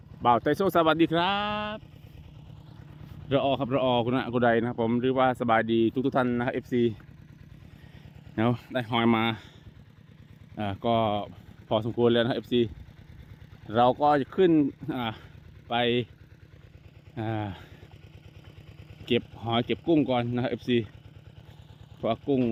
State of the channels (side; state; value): both; identical; correlation 1.00